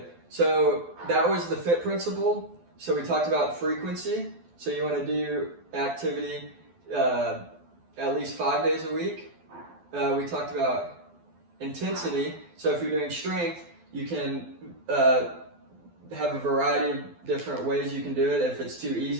So that was the FITT principle. So we talked about frequency. So you want to do activity at least 5 days a week. We talked about intensity. So if you're doing strength, you can have a variety of different ways you can do it if it's too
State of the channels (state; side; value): late; left; 12 ms